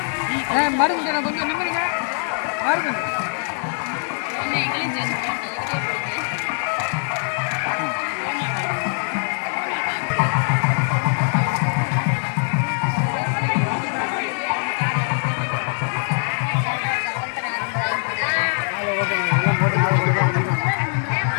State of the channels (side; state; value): right; silent; 59 dB below the other